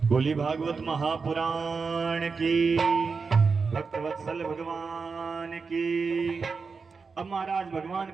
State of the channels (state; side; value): quieter; left; 4.9 dB